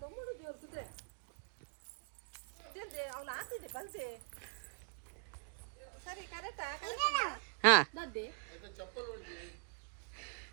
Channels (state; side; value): quieter; left; 39.0 dB